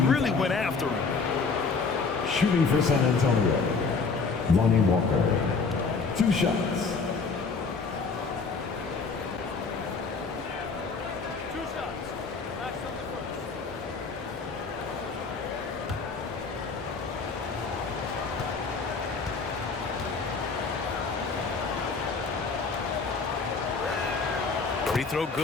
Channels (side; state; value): right; quieter; 4.6 dB